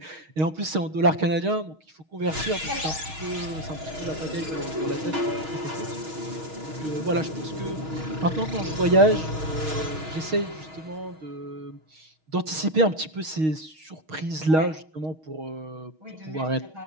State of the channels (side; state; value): left; late; 6.4 ms